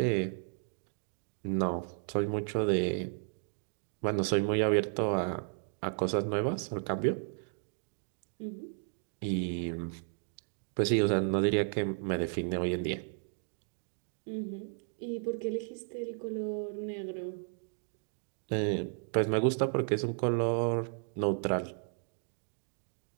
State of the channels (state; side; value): silent; left; 55 dB below the other